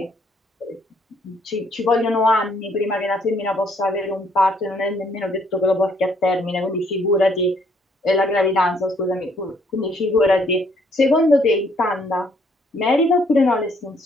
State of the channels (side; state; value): both; normal; correlation 0.66